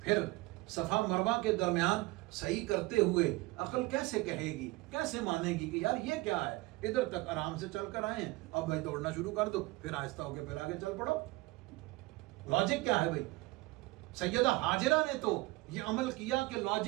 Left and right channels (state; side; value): quieter; left; 21.9 dB